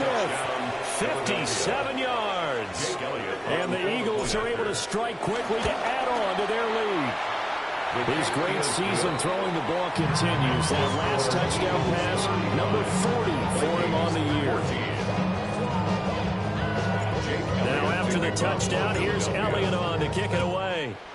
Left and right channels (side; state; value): both; identical; correlation 1.00